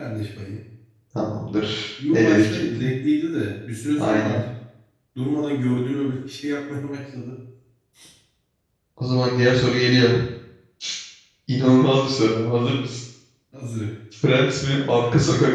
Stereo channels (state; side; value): identical; both; correlation 1.00